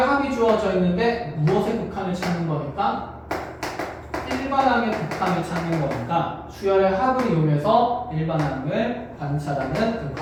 주어져 있는데 무엇의 극한을 찾는 거니까 일반항의 극한을 찾는 거니까 수열의 합을 이용해서 일반항을 관찰하는 그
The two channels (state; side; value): identical; both; correlation 1.00